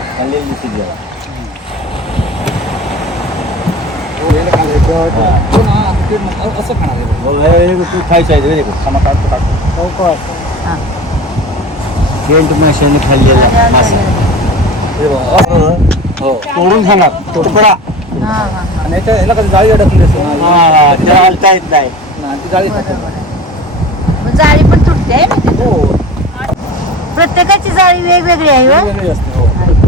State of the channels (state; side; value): normal; both; correlation 0.35